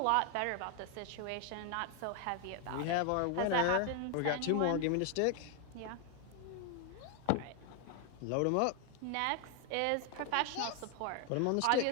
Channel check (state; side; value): different; both; correlation 0.00